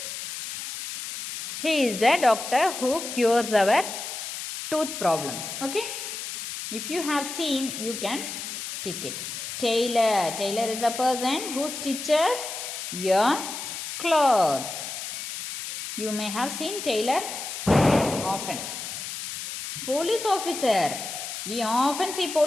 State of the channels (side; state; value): left; noise; hiss, 7 dB below the sound